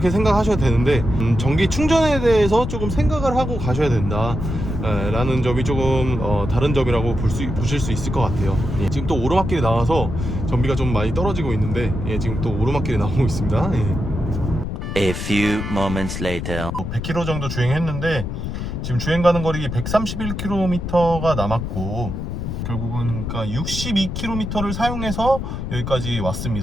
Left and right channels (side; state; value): left; noise; rumble, 5 dB below the sound